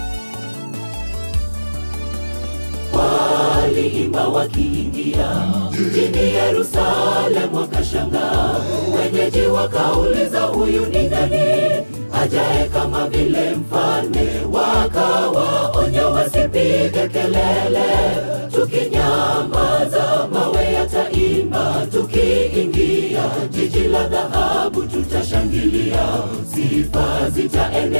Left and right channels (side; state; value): both; inverted; correlation -1.00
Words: Waliimba wakiingia mjini Yerusalemu, wakashangaa. Wenyeji wakauliza, huyu ni nani ajaye kama vile mfalme? Wakawaonya wasipige kelele, tukinyamaza mawe yataimba. Tukiingia jiji la dhahabu tutashangilia, sifa